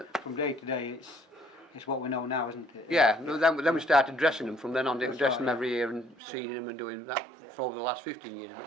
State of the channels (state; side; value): drops out; left; at 6.2 s